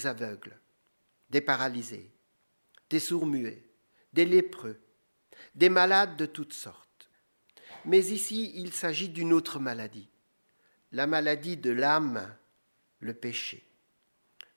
aveugles, des paralysés, des sourds-muets, des lépreux, des malades de toutes sortes. Mais ici, il s'agit d'une autre maladie, la maladie de l'âme, le péché.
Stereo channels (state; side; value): inverted; both; correlation -1.00